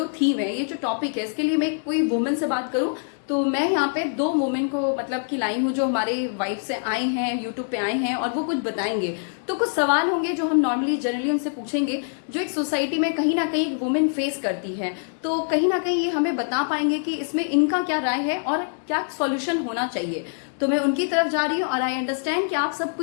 थीम है, ये जो टॉपिक है, इसके लिए मैं कोई वुमेन से बात करूं। तो मैं यहाँ पे दो वुमेन को मतलब कि लाई हूँ जो हमारे वाइफ से आए हैं, यूट्यूब पे आए हैं और वो कुछ बताएंगे। तो कुछ सवाल होंगे जो हम नॉर्मली जनरली उनसे पूछेंगे, जो एक सोसाइटी में कहीं ना कहीं वुमेन फेस करती है। तो कहीं ना कहीं ये हमें बता पाएंगे कि इसमें इनका क्या राय है और क्या सॉल्यूशन होना चाहिए। तो मैं उनकी तरफ जा रही हूँ और आई अंडरस्टैंड कि आप सबको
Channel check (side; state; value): right; silent; digital silence